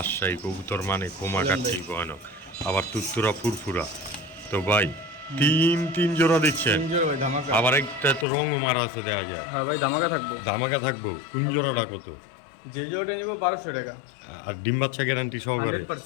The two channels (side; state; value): right; drops out; at 8.2 s